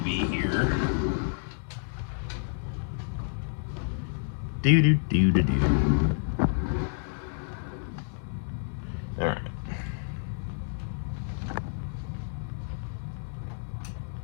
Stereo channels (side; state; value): right; silent; 58 dB below the other